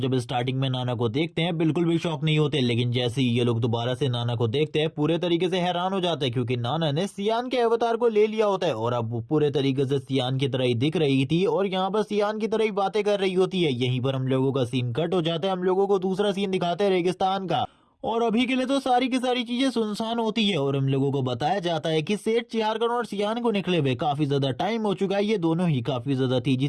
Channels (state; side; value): identical; both; correlation 1.00